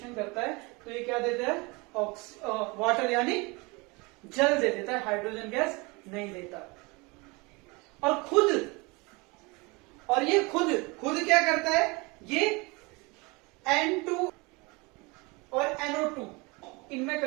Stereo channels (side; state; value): left; quieter; 26.5 dB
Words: करता है तो ये क्या देता है, वाटर यानी जल दे देता है, हाइड्रोजन गैस नहीं देता। और ये खुद क्या करता है, ये N2 और NO2 इनमें